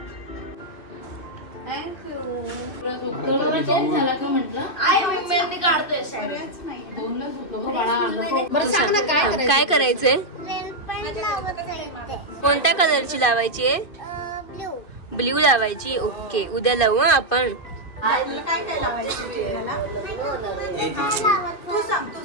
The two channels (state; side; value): late; right; 2.6 ms